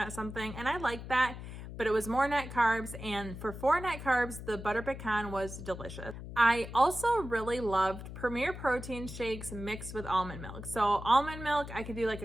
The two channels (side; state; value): left; noise; hum, 10 dB below the sound